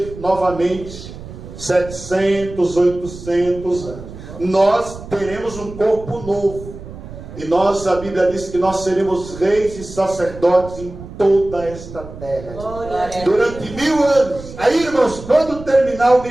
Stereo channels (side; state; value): right; noise; rumble, 14 dB below the sound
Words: novamente 700, 800 anos. Nós teremos um corpo novo, e a Bíblia diz que nós seremos reis e sacerdotes em toda esta terra durante 1000 anos. Aí, irmãos, quando terminar o